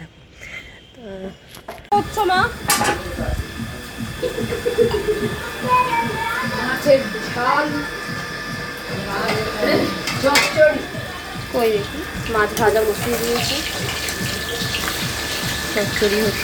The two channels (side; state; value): both; identical; correlation 1.00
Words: থাকো। তো মা মাছের ঝাল, কই দেখি মাছ ভাজা বসিয়ে দিয়েছি, চচ্চড়ি